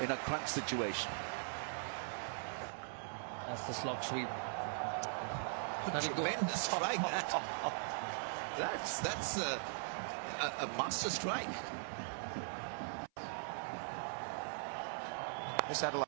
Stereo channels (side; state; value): left; silent; 51 dB below the other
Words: a crunch situation. That's the slog sweep. Tremendous strike. That's a master strike. This